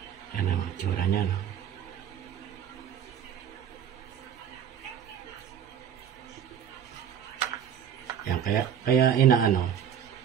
Yan ang itsura niya, no? Kaya inaano,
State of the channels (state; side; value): quieter; left; 9.0 dB